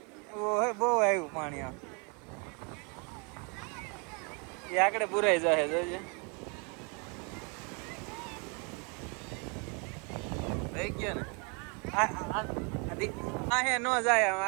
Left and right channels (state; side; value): quieter; left; 34.0 dB